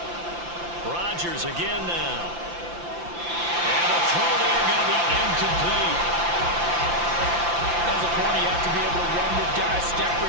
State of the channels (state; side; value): late; left; 5.8 ms